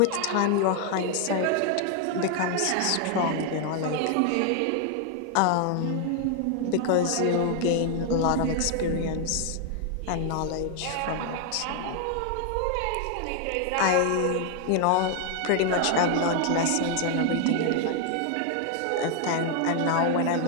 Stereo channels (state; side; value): different; both; correlation 0.00